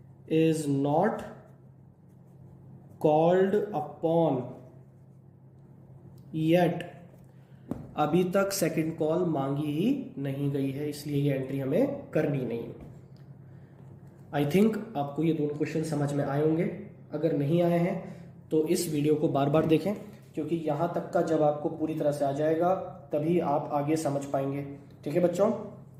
is not called upon yet. अभी तक सेकंड कॉल मांगी ही नहीं गई है, इसलिए ये एंट्री हमें करनी नहीं है। आई थिंक आपको ये दोनों क्वेश्चन समझ में आए होंगे। अगर नहीं आए हैं तो इस वीडियो को बार बार देखें, क्योंकि यहां तक का जब आपको पूरी तरह से आ जाएगा तभी आप आगे समझ पाएंगे। ठीक है बच्चों,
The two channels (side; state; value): both; identical; correlation 1.00